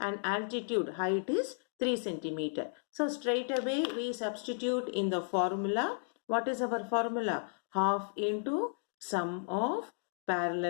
altitude height is 3 centimeter. So straight away we substitute in the formula. What is our formula? Half into sum of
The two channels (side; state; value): right; silent; digital silence